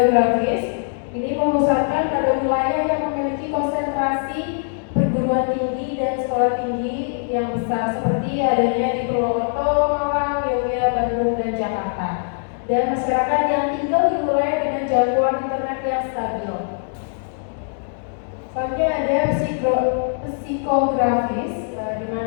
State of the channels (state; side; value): silent; right; digital silence